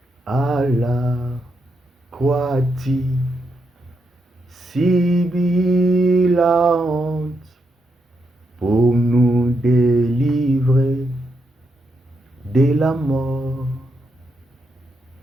à la croix-tu subis la honte pour nous délivrer de la mort.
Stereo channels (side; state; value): both; normal; correlation 0.82